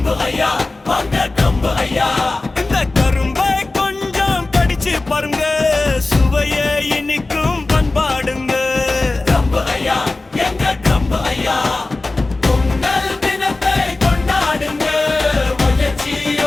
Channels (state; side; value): quieter; right; 3.2 dB